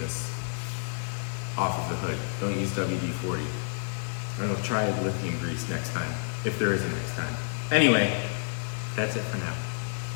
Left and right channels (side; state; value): right; silent; 58 dB below the other